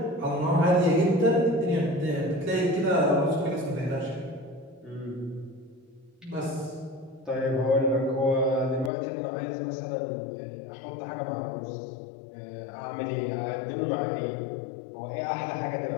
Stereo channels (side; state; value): right; drops out; at 8.9 s